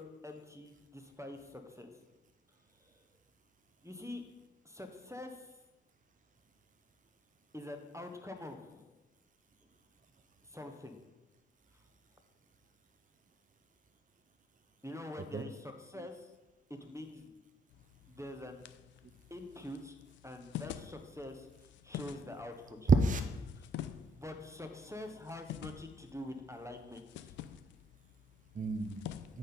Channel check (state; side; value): normal; both; correlation 0.72